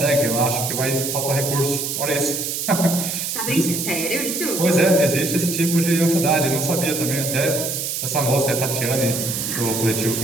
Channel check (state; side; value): noise; right; hiss, 3 dB below the sound